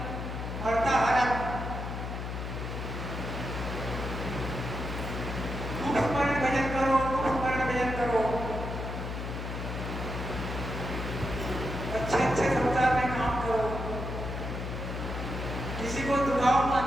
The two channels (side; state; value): left; noise; hum, 5 dB below the sound